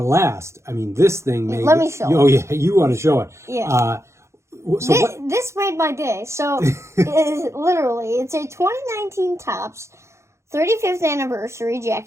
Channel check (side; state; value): left; late; 0.14 ms